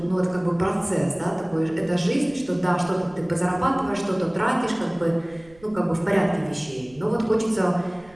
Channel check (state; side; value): noise; right; rumble, 25 dB below the sound